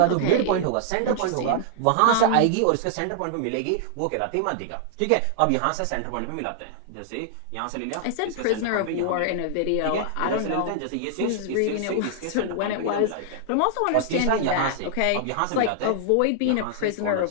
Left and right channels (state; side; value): different; both; correlation -0.01